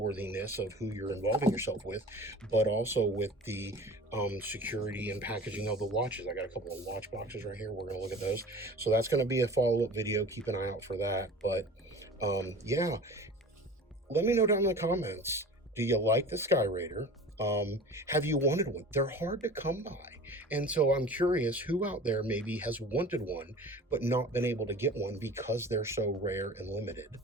of who you're involving yourself with, but also with the security and packaging of the watches. I got a couple of watch boxes right here. We're going to look at those. So that's going to be a follow-up video. Keep an eye out for that. But yeah, let me know down in the comments. Do you like the Skyraider? Have you wanted one? They're hard to come by. And so I'm curious who out there maybe has wanted one, but not been able to get one because they're so rare and limited.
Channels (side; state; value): both; normal; correlation 0.39